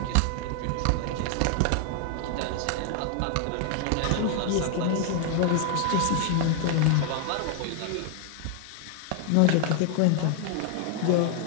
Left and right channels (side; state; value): both; different; correlation 0.00